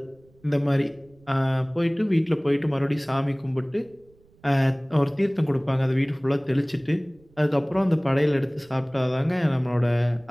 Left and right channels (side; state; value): right; noise; rumble, 30 dB below the sound